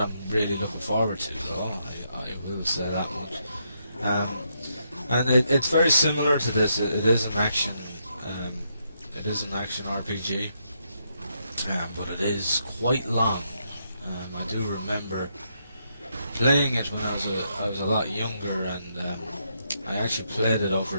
I'm really looking forward to, though. I will say that much. And it's very similar to this. It is an action. It is an action RPG, but it is quite long. I do remember playing it when I was a lot younger, and I actually played it over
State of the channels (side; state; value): both; inverted; correlation -0.78